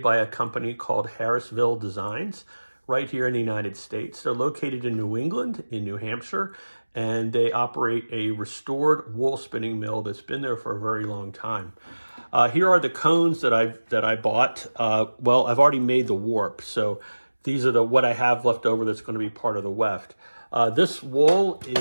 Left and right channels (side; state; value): both; inverted; correlation -1.00